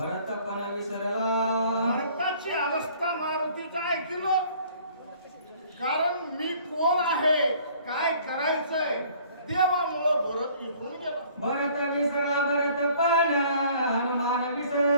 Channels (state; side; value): inverted; both; correlation -0.55